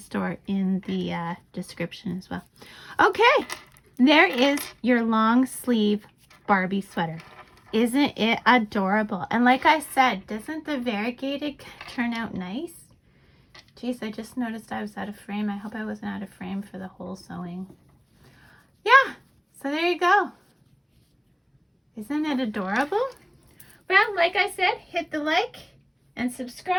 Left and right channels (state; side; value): identical; both; correlation 1.00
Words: in the description as well. Okay, there is your long sleeve Barbie sweater. Isn't it adorable? And like I said, doesn't the variegated turn out nice? Geez, I just noticed I was out of frame. I hope I wasn't out of frame for the whole sewing. Yeah, so there you go. Isn't it adorable? Well, like I said, hit the like and subscribe.